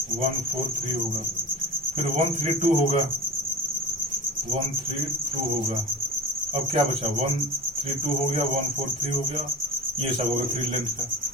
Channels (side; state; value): both; normal; correlation 0.32